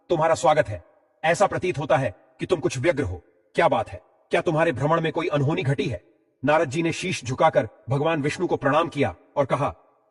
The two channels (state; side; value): identical; both; correlation 1.00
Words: तुम्हारा स्वागत है। ऐसा प्रतीत होता है कि तुम कुछ व्यग्र हो। क्या बात है? क्या तुम्हारे भ्रमण में कोई अनहोनी घटी है? नारद जी ने शीश झुकाकर भगवान विष्णु को प्रणाम किया और कहा,